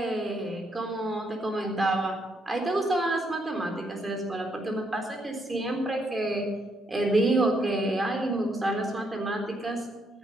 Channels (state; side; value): normal; both; correlation 0.75